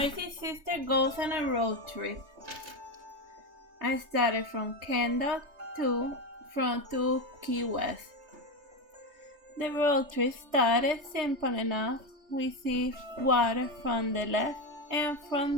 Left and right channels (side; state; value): left; late; 3.3 ms